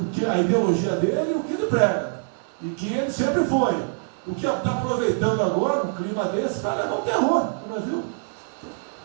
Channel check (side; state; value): left; silent; 60 dB below the other